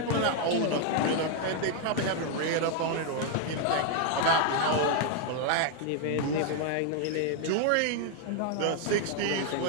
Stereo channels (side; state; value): both; different; correlation 0.00